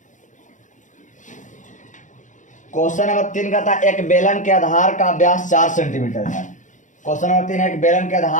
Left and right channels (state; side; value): late; right; 0.36 ms